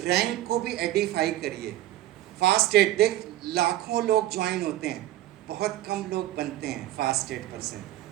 रैंक को भी एडिफाई करिए। फास्ट एड, देख लाखों लोग ज्वाइन होते हैं, बहुत कम लोग बनते हैं फास्ट एड पर्सन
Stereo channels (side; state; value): left; quieter; 14.4 dB